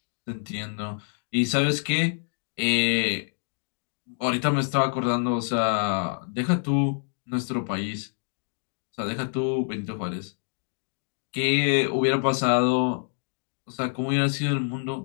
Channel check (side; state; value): right; silent; 60 dB below the other